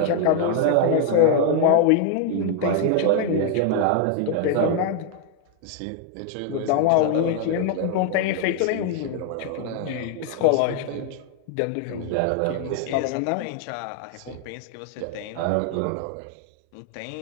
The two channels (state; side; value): different; both; correlation 0.00